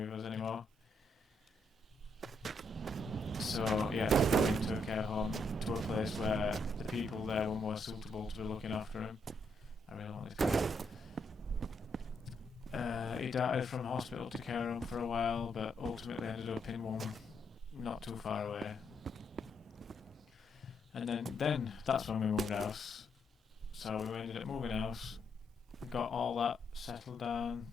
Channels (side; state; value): both; normal; correlation 0.77